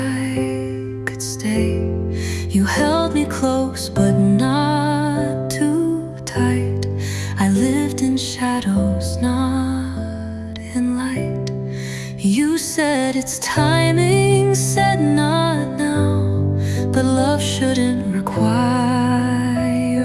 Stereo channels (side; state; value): both; identical; correlation 1.00